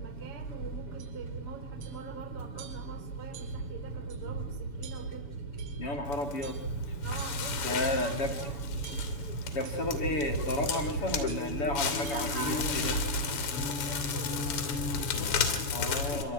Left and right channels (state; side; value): late; right; 7.0 ms